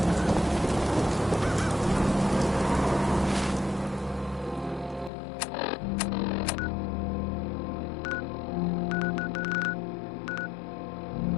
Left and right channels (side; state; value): right; drops out; at 5.1 s